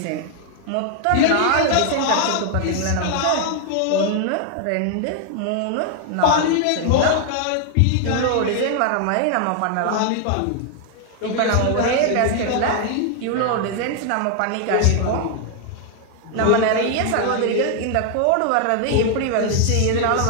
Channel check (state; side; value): different; both; correlation 0.00